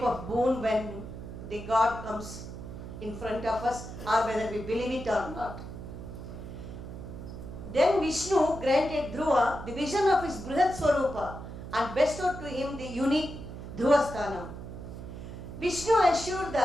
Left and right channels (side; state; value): right; noise; hum, 10 dB below the sound